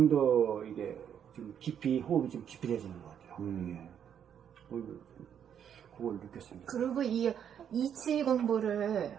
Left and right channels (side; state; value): left; quieter; 8.7 dB